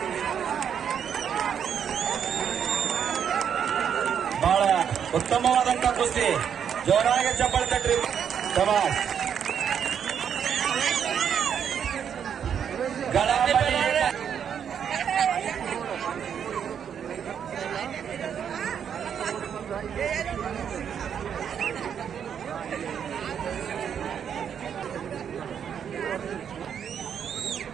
ಬಹಳ ಉತ್ತಮವಾದಂತ ಕುಸ್ತಿ. ಜೋರಾಗಿ ಚಪ್ಪಾಳೆ ತಟ್ರಿ. ಶಬಾಷ್.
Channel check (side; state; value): left; quieter; 8.1 dB